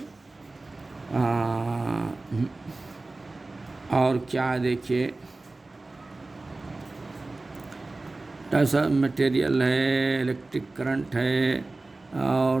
और क्या देखिए, ऐसा मटेरियल है, इलेक्ट्रिक करंट है,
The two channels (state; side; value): quieter; left; 3.2 dB